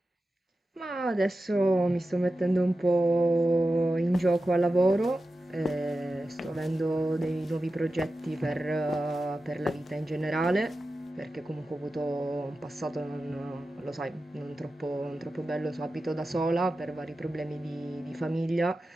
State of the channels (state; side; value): normal; both; correlation 0.93